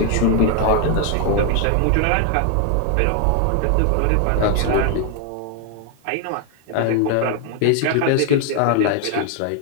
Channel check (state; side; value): different; both; correlation 0.00